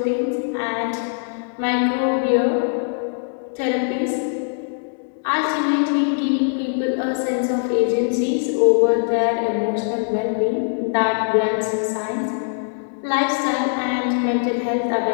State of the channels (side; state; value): right; silent; digital silence